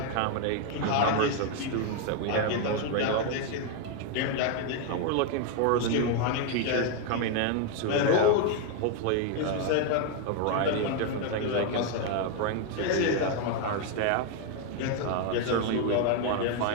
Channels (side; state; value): both; different; correlation 0.01